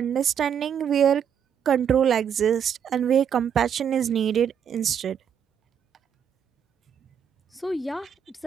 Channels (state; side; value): quieter; left; 8.2 dB